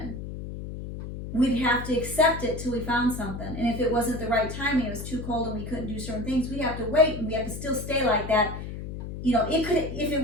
We'd have to accept it till we found something. And if it wasn't the right timing, it was too cold and we couldn't do certain things, we'd have to wait, and we have to still stay like that. If it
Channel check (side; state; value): left; noise; hum, 8 dB below the sound